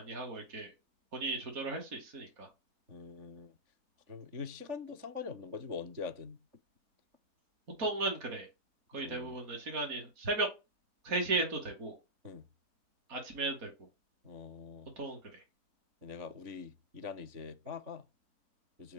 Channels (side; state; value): left; late; 3.5 ms